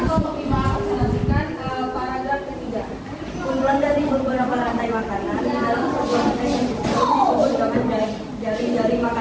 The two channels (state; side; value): identical; both; correlation 1.00